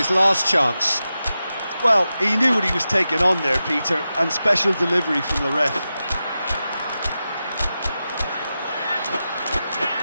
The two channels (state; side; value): inverted; both; correlation -0.91